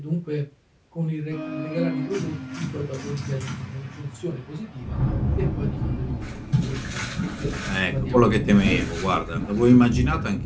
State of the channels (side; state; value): both; identical; correlation 1.00